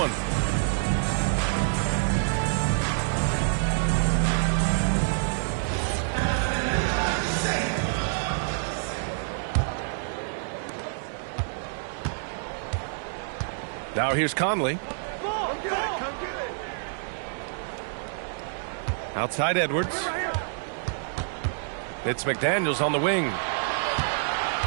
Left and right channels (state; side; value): silent; left; 60 dB below the other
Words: Now here's Conley. Outside Edwards. It's McDaniels on the wing.